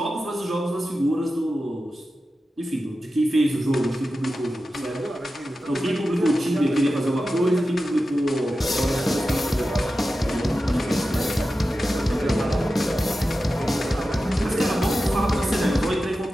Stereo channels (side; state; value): both; normal; correlation 0.93